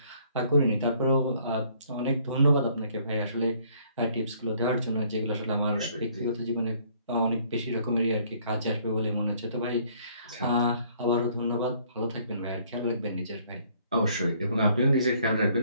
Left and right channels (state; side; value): inverted; both; correlation -0.62